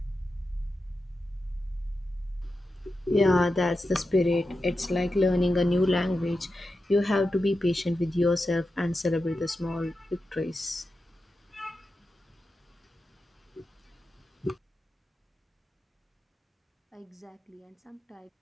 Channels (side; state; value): both; normal; correlation 0.90